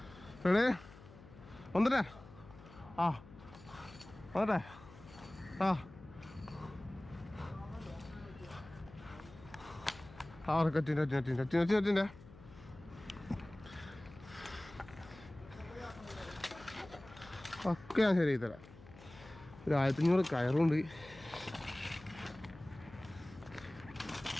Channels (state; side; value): noise; left; hum, 19 dB below the sound